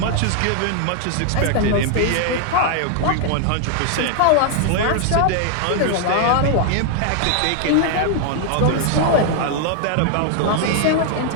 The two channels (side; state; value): both; different; correlation 0.00